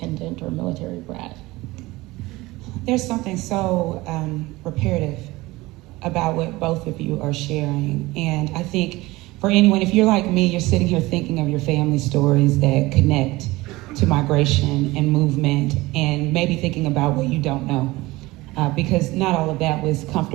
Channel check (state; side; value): quieter; left; 20.2 dB